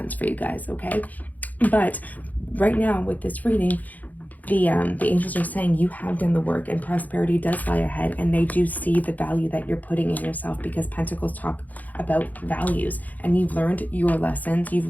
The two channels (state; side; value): late; right; 0.080 ms